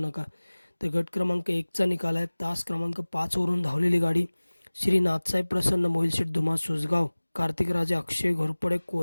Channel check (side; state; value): both; inverted; correlation -1.00